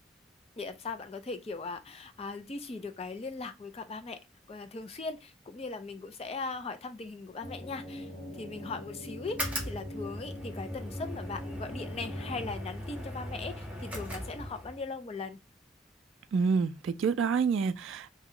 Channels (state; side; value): normal; both; correlation 0.53